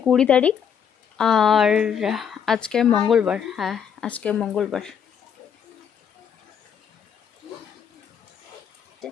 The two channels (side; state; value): right; quieter; 7.8 dB